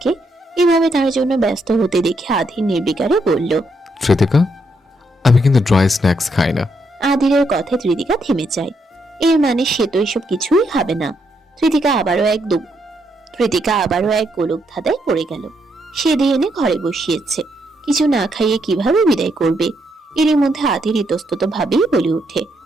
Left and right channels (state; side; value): normal; both; correlation 0.77